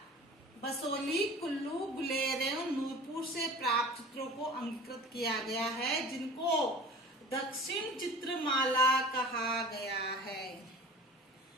बसोली, कुल्लू, गुलेर एवं नूरपुर से प्राप्त चित्रों को अंगीकृत किया गया है, जिनको दक्षिण चित्रमाला कहा गया है।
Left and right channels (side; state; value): both; normal; correlation 0.40